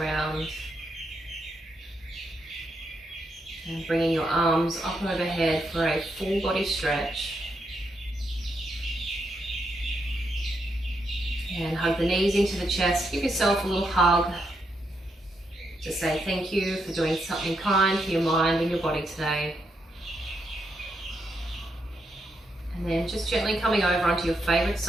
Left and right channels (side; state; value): both; normal; correlation 0.81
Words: and bringing your arms up and overhead for a full body stretch. And hug the knees into the chest, give yourself a little hug. To say thank you for doing something kind for your mind and your body today. And then just gently coming over onto your favorite